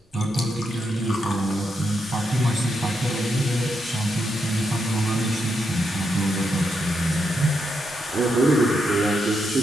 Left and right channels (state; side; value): normal; both; correlation 0.82